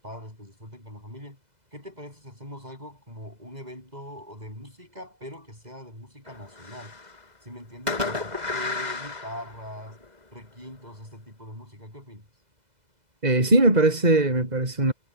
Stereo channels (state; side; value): late; left; 2.0 ms